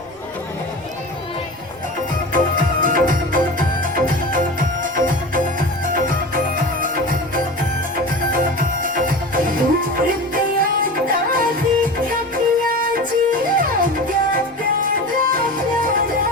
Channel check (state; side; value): noise; left; rumble, 29 dB below the sound